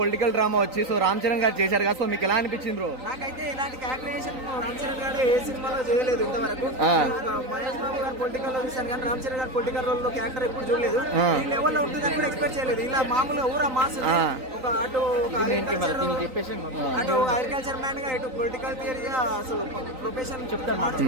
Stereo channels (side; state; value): left; late; 3.9 ms